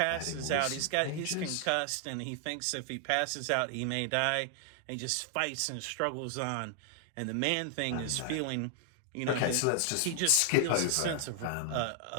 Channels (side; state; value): both; different; correlation 0.00